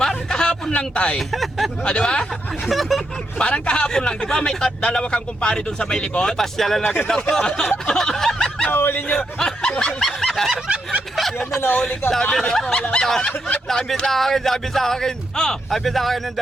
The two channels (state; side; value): normal; both; correlation 0.81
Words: kahapon lang, tay. Di ba? Parang kahapon lang. Di ba may dalawa kang kumpare doon sa may likod? Pasyalan na kita ko. Nahuli nyo. Yan na, nahuli ka. Sabi sa akin. Oh. Sabi sa akin ng